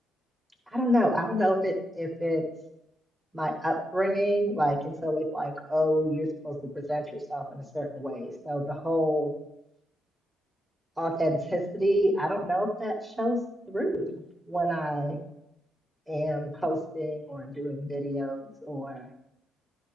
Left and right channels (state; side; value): normal; both; correlation 0.85